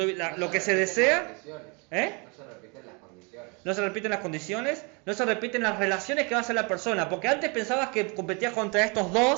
Lo que se desea, ¿eh? No se repiten las condiciones. No se repiten las condiciones, no se repiten las relaciones que va a hacer la persona, porque antes pensabas que competías contra estos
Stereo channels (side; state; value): left; quieter; 31.7 dB